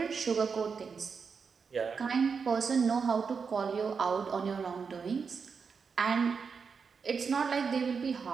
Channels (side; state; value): left; quieter; 5.7 dB